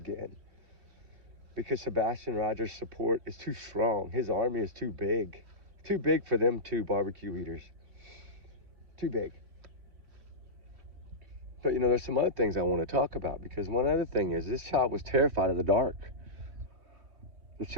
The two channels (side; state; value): left; late; 3.1 ms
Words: Because Sebastian Rogers' support is too strong. His army is too big. Too big for them two barbecue eaters. Too big. But, there's some other things I want to talk about. Because one other thing is, this child was terrified of the dark. This